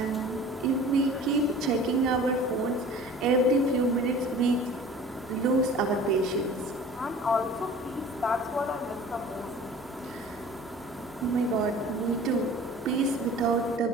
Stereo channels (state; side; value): normal; both; correlation 0.44